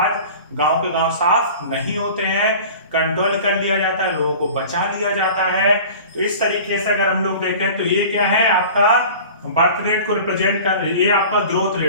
गांव के गांव साफ नहीं होते हैं, कंट्रोल कर लिया जाता है, लोगों को बचा लिया जाता है। तो इस तरीके से अगर हम लोग देखें तो ये क्या है? आपका बर्थ रेट को रिप्रेजेंट कर, ये आपका ग्रोथ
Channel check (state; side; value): inverted; both; correlation -0.40